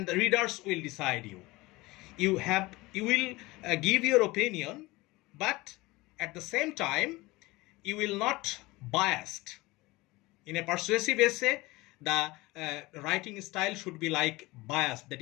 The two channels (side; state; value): right; quieter; 21.3 dB